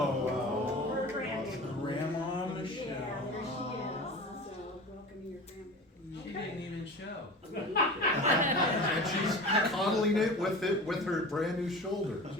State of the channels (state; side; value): normal; both; correlation 0.34